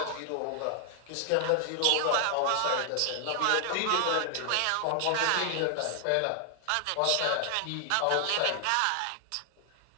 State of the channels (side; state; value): both; different; correlation 0.00